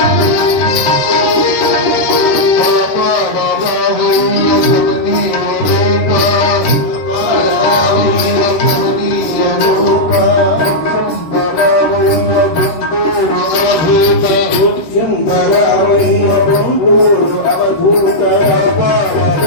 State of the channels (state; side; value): late; right; 13 ms